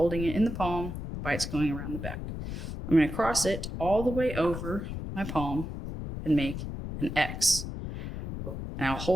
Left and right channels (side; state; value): left; noise; rumble, 6 dB below the sound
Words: it in the palm, bite's going around the back. I'm going to cross it all the way over my palm and make an X. And I'll